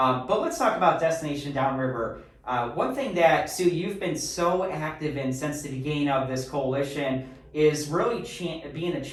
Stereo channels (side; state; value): both; identical; correlation 1.00